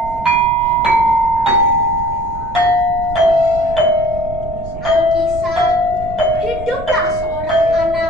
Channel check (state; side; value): noise; right; rumble, 12 dB below the sound